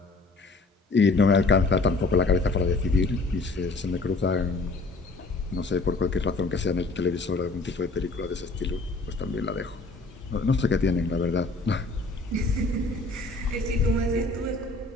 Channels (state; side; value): quieter; right; 3.4 dB